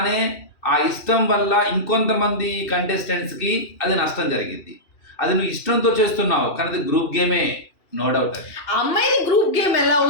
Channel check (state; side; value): late; right; 2.7 ms